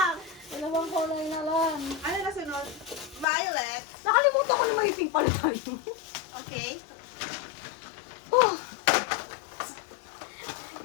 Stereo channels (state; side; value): drops out; right; at 3.2 s